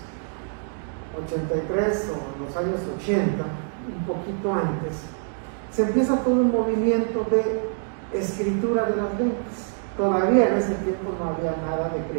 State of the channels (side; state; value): left; silent; 62 dB below the other